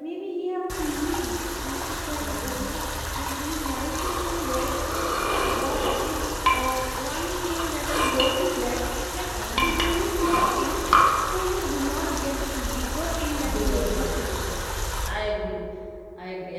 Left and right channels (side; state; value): both; identical; correlation 1.00